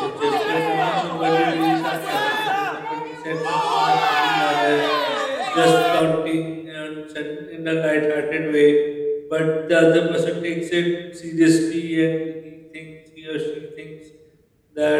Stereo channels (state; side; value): identical; both; correlation 1.00